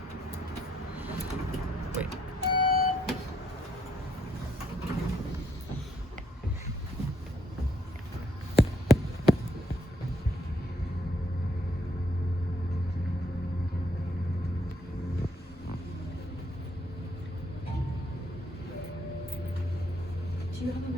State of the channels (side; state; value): both; normal; correlation 0.72